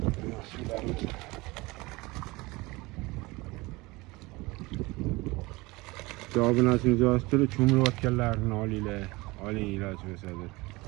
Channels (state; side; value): quieter; left; 22.7 dB